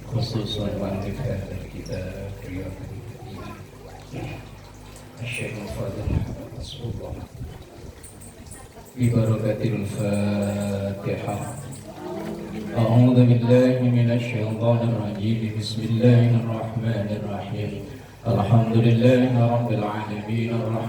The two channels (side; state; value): both; identical; correlation 1.00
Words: khususan wa al-kitab riyadul Syekh Fadil Rasulullah Bibarakatil Fatihah. A'udzu billahi minasy syaithanir rajim. Bismillahirrahmanir rahim. Alhamdulillahi rabbil alamin